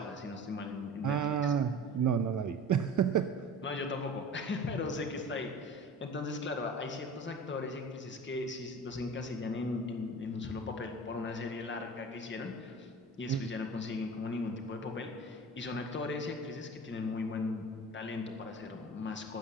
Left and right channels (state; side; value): normal; both; correlation 0.37